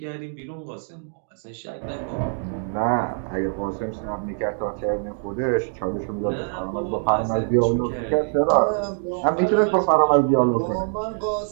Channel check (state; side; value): silent; left; 58 dB below the other